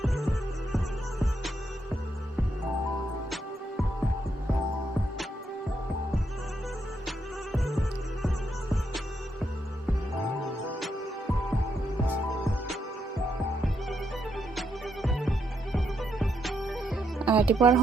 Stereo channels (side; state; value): both; normal; correlation 0.79